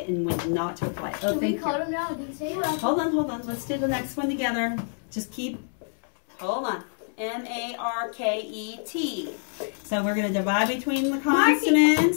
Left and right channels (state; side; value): silent; right; 61 dB below the other